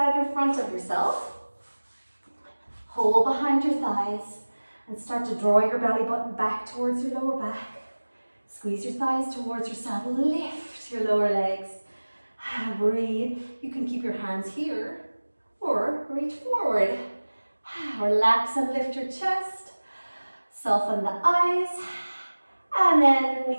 in front of yourself. Hold behind your thighs and start to draw your belly button back towards your lower back. Squeeze your thighs towards yourself. Lift your lower legs. Breathe. You can keep your hands here or reach forward. Relax and lift your chest. Soften the eyes. And then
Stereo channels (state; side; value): inverted; both; correlation -1.00